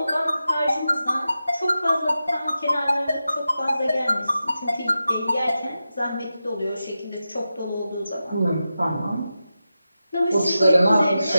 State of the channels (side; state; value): both; inverted; correlation -0.91